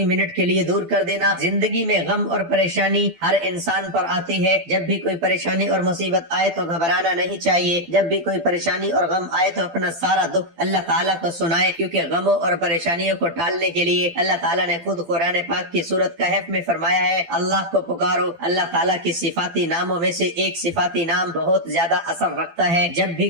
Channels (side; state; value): left; late; 12 ms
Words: منٹ کے لیے دور کر دینا۔ زندگی میں غم اور پریشانی ہر انسان پر آتی ہے، جب بھی کوئی پریشانی اور مصیبت آئے تو گھبرانا نہیں چاہیے، جب بھی کوئی پریشانی اور غم آئے تو اپنا سارا دکھ اللہ تعالیٰ کو سنائے، کیونکہ غموں اور پریشانیوں کو ٹالنے کے لیے اللہ تعالیٰ نے خود قرآن پاک کی سورت کہف میں فرمایا ہے، اللہ کو پکارو۔ اللہ تعالیٰ کی صفاتی ناموں میں سے ایک صفاتی نام بہت زیادہ اثر رکھتا ہے، جب بھی